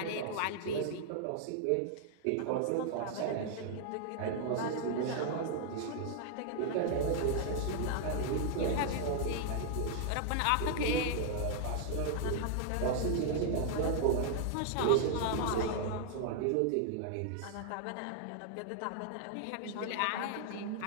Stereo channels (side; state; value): both; different; correlation -0.01